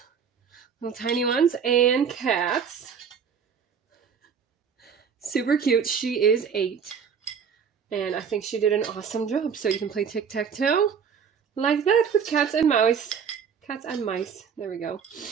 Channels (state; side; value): quieter; left; 6.9 dB